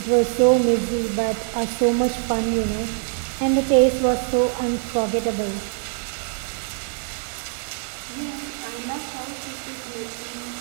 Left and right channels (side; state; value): left; silent; 57 dB below the other